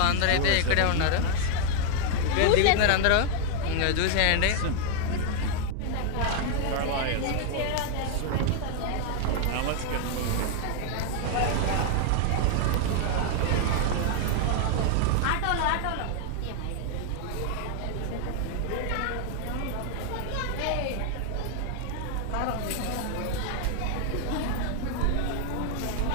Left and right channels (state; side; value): different; both; correlation 0.00